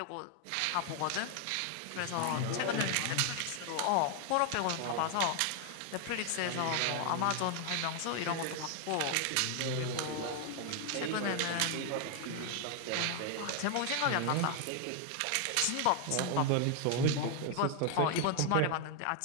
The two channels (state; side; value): different; both; correlation 0.00